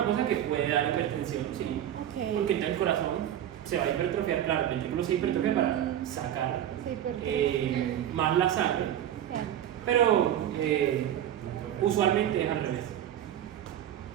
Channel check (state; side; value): quieter; left; 11.1 dB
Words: cosa que puede dar hipertensión, sí. Ok. Porque entonces el corazón se va a hipertrofiar, claro, el ventrículo se hipertrofia para sacar Se hipertrofia. más la sangre, Claro. pero usualmente es al revés.